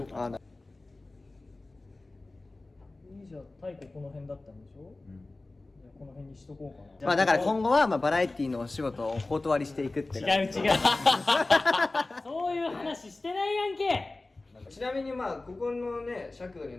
うかな。いいじゃあ太鼓この辺だったんでしょ。じゃあこの辺にしとこうかな。まあだから今後はまあバラエティのお仕事をお断りしていくって違う違うそういう話してないやんけ。ちなみにまあここのね尺度に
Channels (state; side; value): quieter; right; 3.1 dB